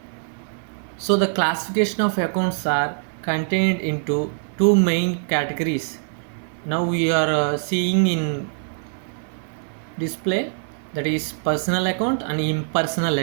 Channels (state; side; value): silent; left; 58 dB below the other